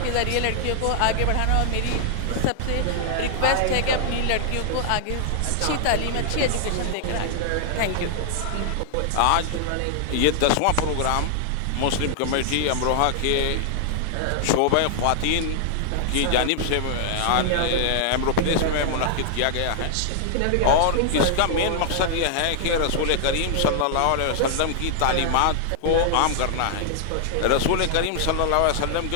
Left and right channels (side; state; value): both; different; correlation -0.01